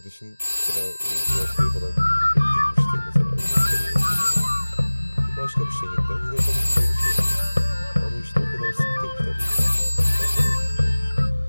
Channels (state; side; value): inverted; both; correlation -1.00